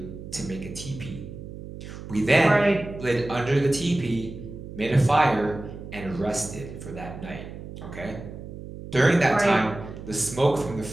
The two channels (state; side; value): noise; right; hum, 12 dB below the sound